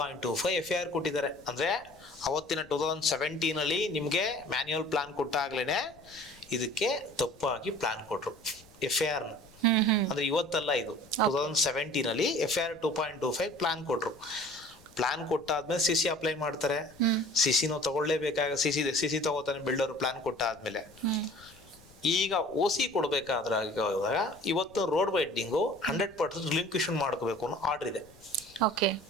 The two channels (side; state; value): left; noise; rumble, 26 dB below the sound